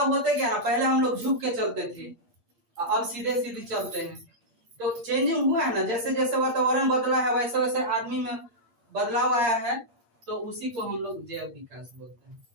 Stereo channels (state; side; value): late; left; 8.6 ms